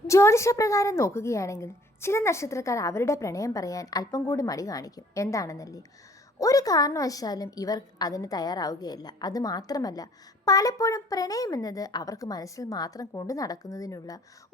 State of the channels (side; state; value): both; normal; correlation 0.56